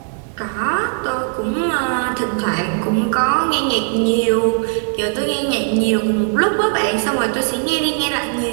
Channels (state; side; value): silent; left; 62 dB below the other